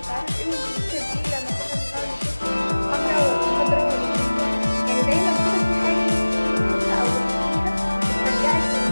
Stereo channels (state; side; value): inverted; both; correlation -1.00